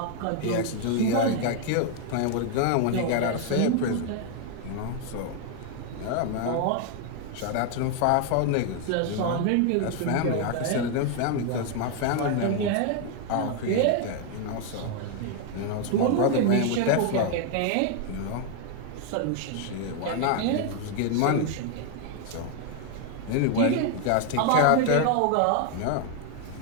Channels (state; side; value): different; both; correlation 0.01